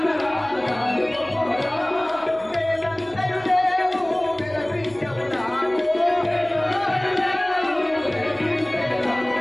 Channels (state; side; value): noise; right; hum, 26 dB below the sound